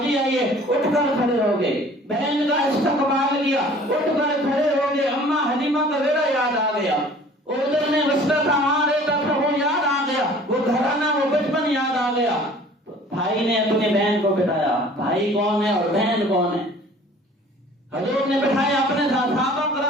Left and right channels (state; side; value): normal; both; correlation 0.49